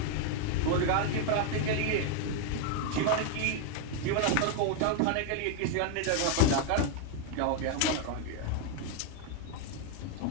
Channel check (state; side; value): different; both; correlation 0.00